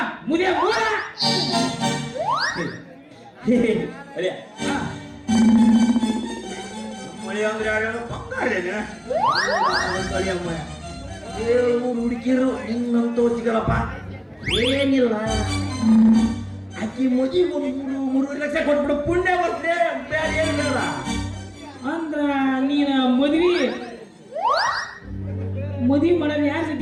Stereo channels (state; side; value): identical; both; correlation 1.00